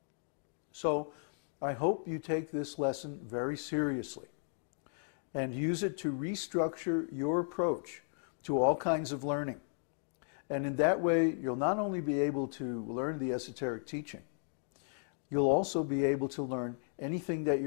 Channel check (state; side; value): silent; right; digital silence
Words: So I hope you take this lesson very seriously and use it to restructure your approach to all kinds of learning. And in that way, you'll not only be able to learn the esoteric teaching, you'll also be able to learn anything that